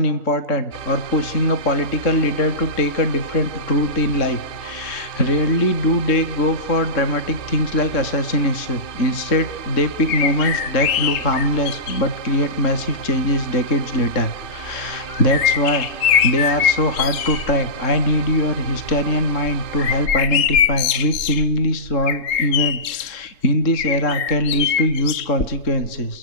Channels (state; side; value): late; right; 3.7 ms